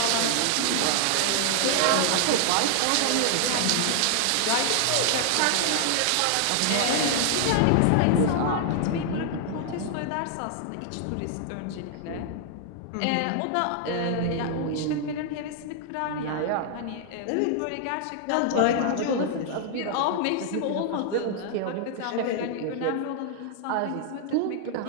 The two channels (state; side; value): different; both; correlation 0.00